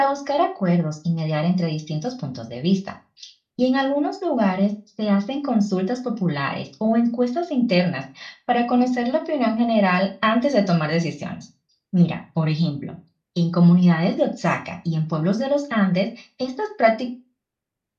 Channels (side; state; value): both; identical; correlation 1.00